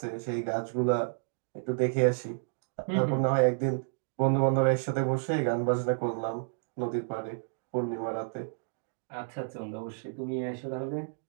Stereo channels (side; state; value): left; silent; digital silence